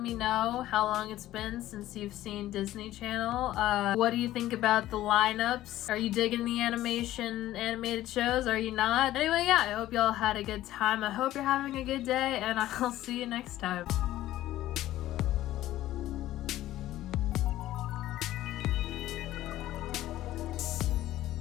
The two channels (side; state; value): right; quieter; 14.5 dB